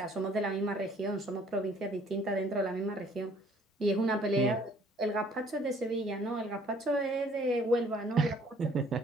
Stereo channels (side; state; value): both; normal; correlation 0.58